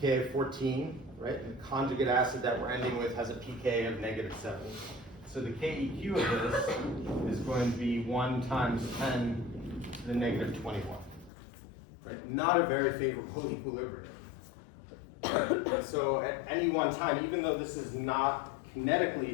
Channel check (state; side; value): drops out; right; at 11.3 s